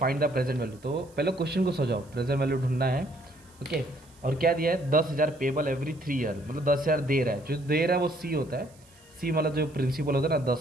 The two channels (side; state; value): right; noise; hiss, 28 dB below the sound